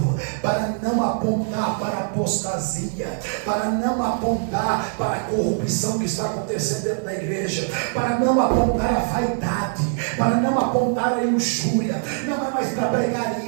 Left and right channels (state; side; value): silent; left; 62 dB below the other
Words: para não apontar para a apostasia, para não apontar para a corrupção que está acontecendo dentro da igreja, para não apontar a vaidade, para não apontar a luxúria. Não é mais para pregar